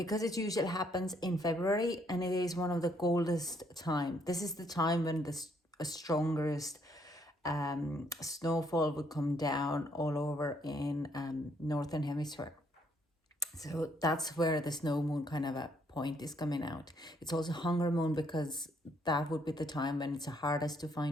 it usually happens in February and it is one of the coldest time. This is the time when the strongest snowfall would come down all over in northern hemisphere. So that's where the snow moon kind of a point is coming out. It's also hunger moon because that would be the time when it's the hardest to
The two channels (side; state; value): both; normal; correlation 0.70